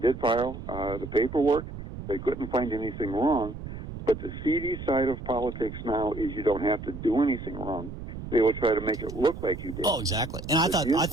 did file the paperwork. They couldn't find anything wrong. But the seedy side of politics now is you don't have to do anything wrong. They will try to make it look like you did. Oh, exactly. And I thought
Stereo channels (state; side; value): noise; right; rumble, 10 dB below the sound